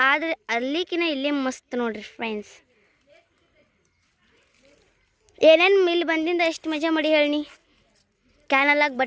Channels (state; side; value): identical; both; correlation 1.00